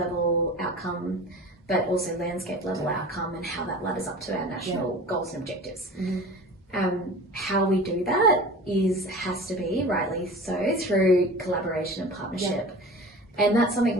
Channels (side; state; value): both; normal; correlation 0.37